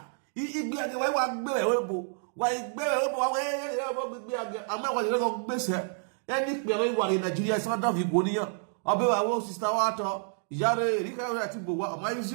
He be the way one bearable. Why bearable away? I'm not going to miss her. Any one in Nigeria, some of you go near. I'll be our sister water. Yare, Rika, Tibu, my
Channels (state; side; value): silent; left; digital silence